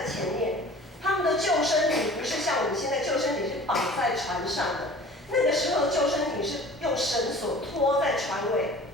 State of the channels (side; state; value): both; normal; correlation 0.44